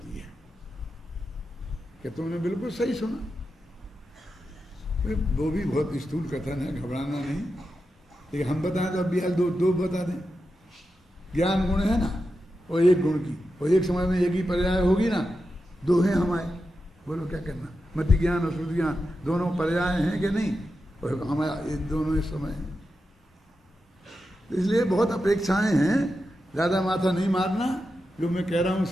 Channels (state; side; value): normal; both; correlation 0.89